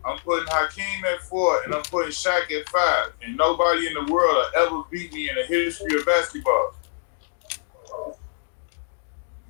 I'm putting Hakeem at 4, and I'm putting Shaq at 5. And nobody in the world will ever beat me in the history of basketball.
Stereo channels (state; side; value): silent; right; digital silence